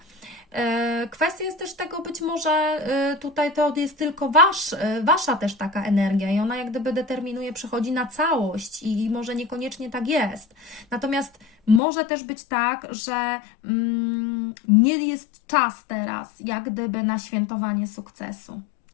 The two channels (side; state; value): right; drops out; at 11.8 s